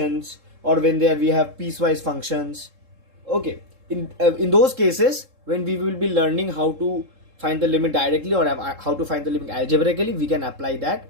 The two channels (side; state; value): left; late; 3.7 ms